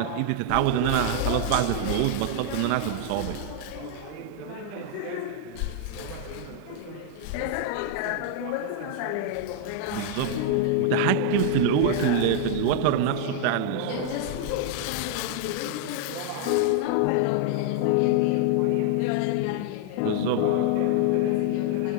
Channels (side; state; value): both; different; correlation 0.00